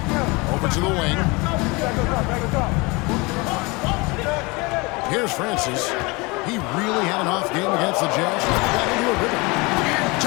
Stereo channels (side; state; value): right; quieter; 25.9 dB